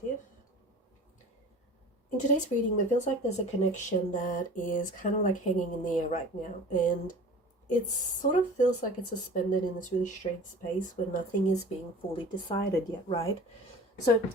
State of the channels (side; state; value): both; normal; correlation 0.40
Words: In today's reading, it feels like there's a connection that is kind of like hanging in the air right now, and it sort of feels like it's suspended in this really strange space where nothing is being fully decided yet, right? So